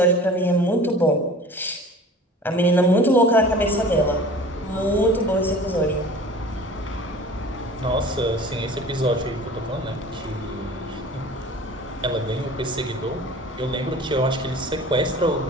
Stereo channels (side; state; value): both; normal; correlation 0.43